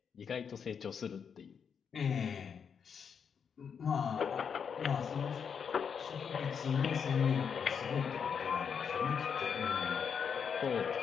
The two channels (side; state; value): right; quieter; 6.8 dB